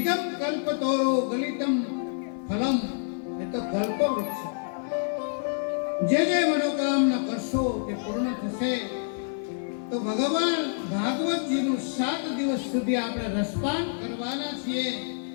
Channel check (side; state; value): right; silent; digital silence